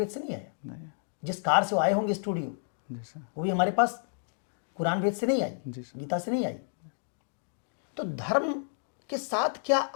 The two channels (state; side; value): silent; right; digital silence